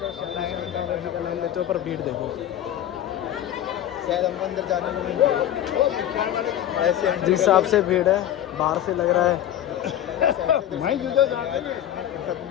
श्याम बाबा जी का नाम लेते हो, पर भीड़ देखो। शायद हम अंदर जाने में नहीं ऐसे जिस हिसाब से भीड़ है, बाहर से लग रहा है।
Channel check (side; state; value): right; quieter; 11.5 dB